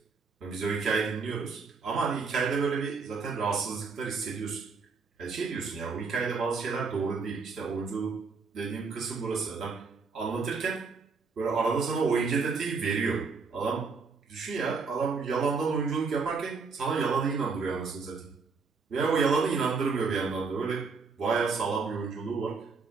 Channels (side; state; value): left; quieter; 4.8 dB